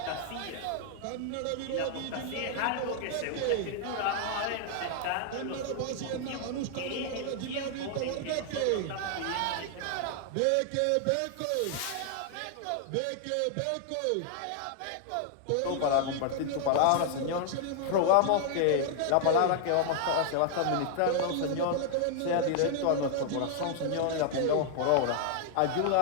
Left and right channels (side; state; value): both; different; correlation 0.00